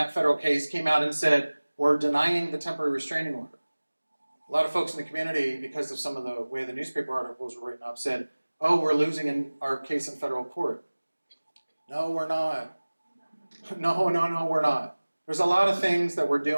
federal case came out and said, we're denying the temporary restraining order. A lot of folks in the community, because of some of the way the newspaper articles were written up, said, oh, we're losing in our case in federal court. No, we're not. No, we're not. There's a lot of things that we're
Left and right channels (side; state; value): both; inverted; correlation -1.00